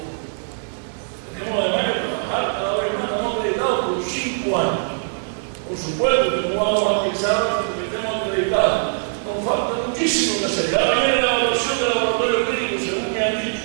Tenemos además que trabajar cada vez más, estamos acreditados por 5 años. Por supuesto que no vamos a pensar porque estemos acreditados. Nos falta muchísimo que hacer. Ahora viene la evaluación del laboratorio clínico, según me han dicho.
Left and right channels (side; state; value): left; silent; digital silence